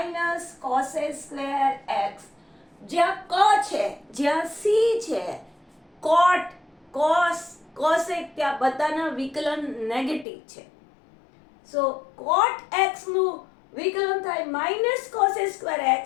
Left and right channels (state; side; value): drops out; right; at 10.2 s